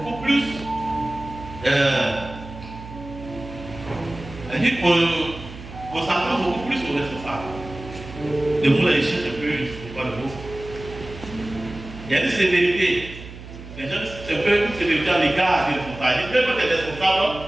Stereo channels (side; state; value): right; noise; hum, 14 dB below the sound